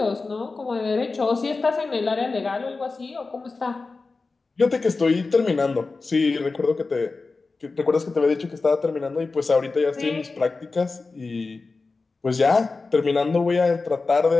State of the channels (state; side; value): quieter; right; 3.9 dB